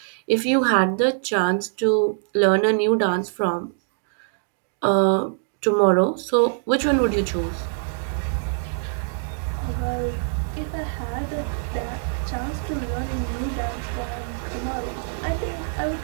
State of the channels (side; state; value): left; silent; digital silence